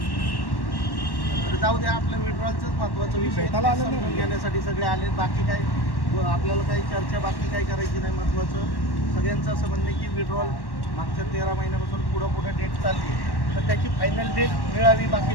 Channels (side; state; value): right; late; 1.1 ms